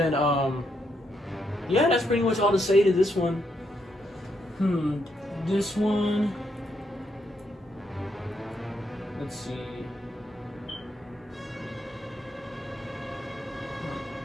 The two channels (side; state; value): both; normal; correlation 0.78